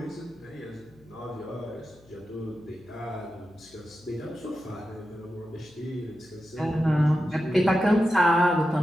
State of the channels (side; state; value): left; noise; hum, 27 dB below the sound